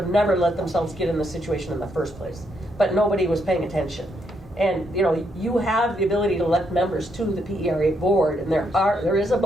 never let themselves get in the situation in the first place. But nobody was paying attention. And you have the ability to elect members to the PERA board, and there is a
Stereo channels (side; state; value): both; normal; correlation 0.76